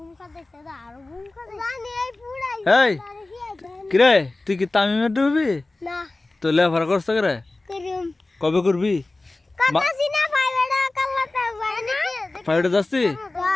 এই কিরে তুই কি তামিমের ডুববি তো লেফার করছ করে কবে করবি ফাইভে যাচ্ছি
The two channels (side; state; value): right; quieter; 3.0 dB